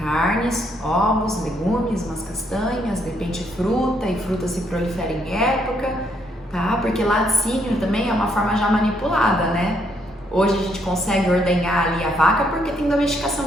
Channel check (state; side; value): normal; both; correlation 0.72